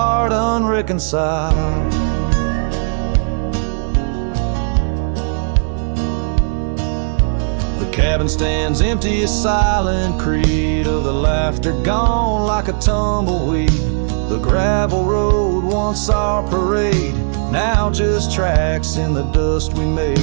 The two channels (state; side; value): silent; left; 68 dB below the other